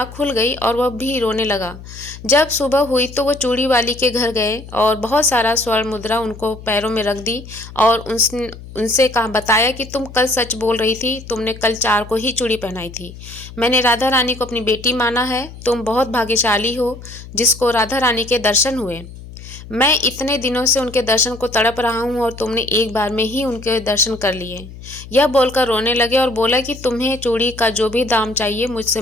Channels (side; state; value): left; noise; hum, 15 dB below the sound